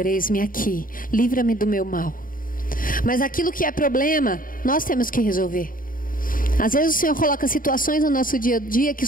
eis-me aqui, livra-me do meu mal. Mas aquilo que é problema, nós temos que resolver. Às vezes o Senhor coloca situações no nosso dia a dia que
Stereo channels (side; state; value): right; late; 0.40 ms